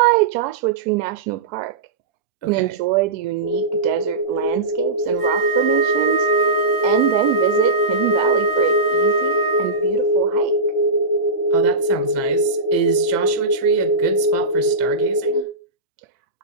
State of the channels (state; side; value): quieter; left; 3.2 dB